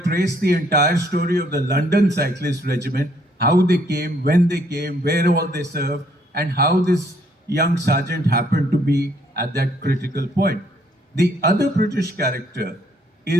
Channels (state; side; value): normal; both; correlation 0.67